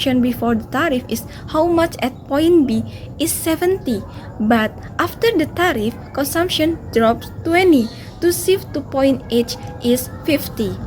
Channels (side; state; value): both; identical; correlation 1.00